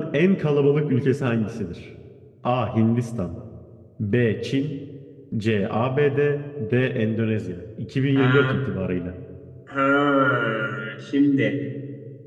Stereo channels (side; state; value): both; identical; correlation 1.00